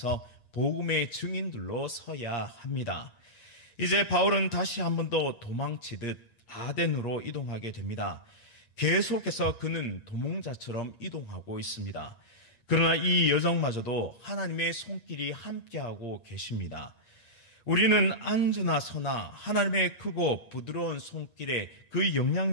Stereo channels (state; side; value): late; right; 8.5 ms